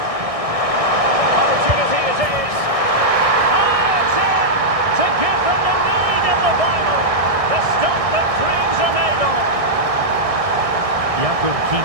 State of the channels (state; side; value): late; left; 1.6 ms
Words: Opportunity it is. Oh, it's in! To give them the lead in the final. The stuff that dreams are made of. Jakub